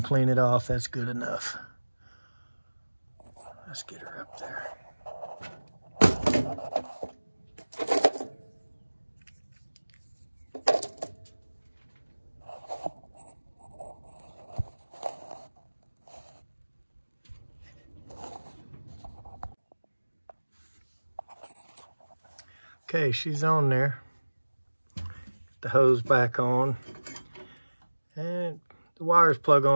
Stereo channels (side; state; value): both; inverted; correlation -1.00